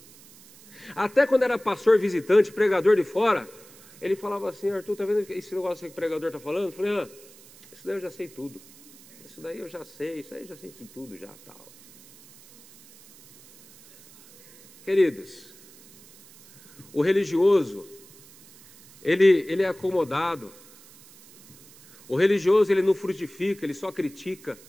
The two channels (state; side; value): noise; right; hiss, 23 dB below the sound